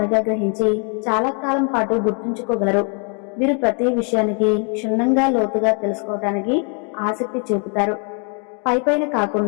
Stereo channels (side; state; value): right; quieter; 39.4 dB